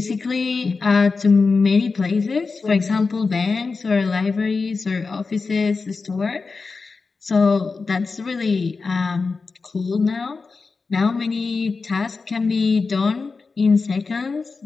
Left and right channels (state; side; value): quieter; right; 4.4 dB